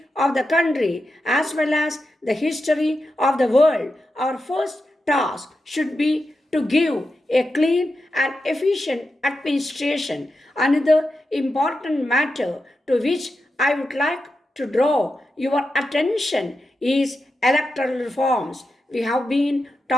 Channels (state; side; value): normal; both; correlation 0.89